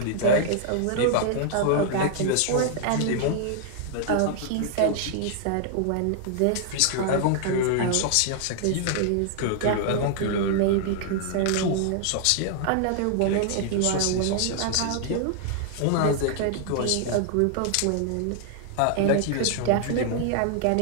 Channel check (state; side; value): different; both; correlation 0.00